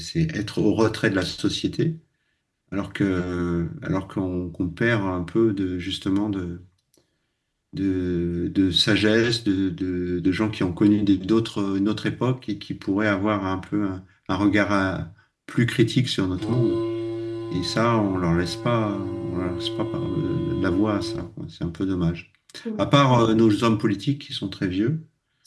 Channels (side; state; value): both; identical; correlation 1.00